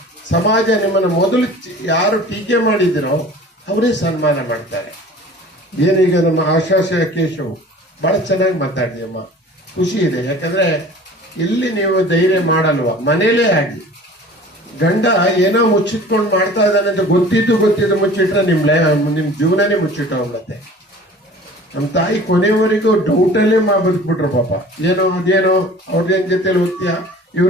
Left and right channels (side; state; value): both; normal; correlation 0.44